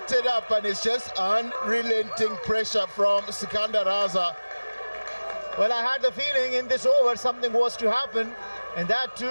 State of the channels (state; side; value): inverted; both; correlation -1.00